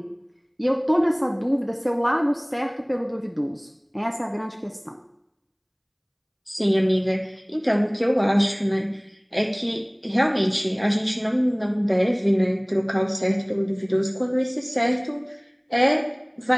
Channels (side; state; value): both; identical; correlation 1.00